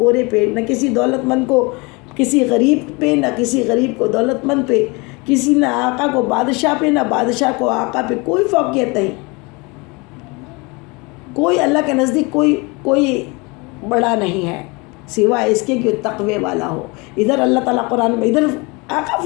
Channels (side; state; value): right; quieter; 27.5 dB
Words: پہ، نہ کسی دولت مند کو کسی غریب پہ، نہ کسی غریب کو دولت مند پہ، کسی نہ آقا کو بادشاہ پہ، نہ بادشاہ کو آقا پہ کوئی فوقیت نہیں۔ کوئی اللہ کے نزدیک کوئی بڑا نہیں ہے سوائے اس کے کہ تقوی والا ہو۔ ادھر اللہ تعالیٰ قرآن میں، ادھر آقا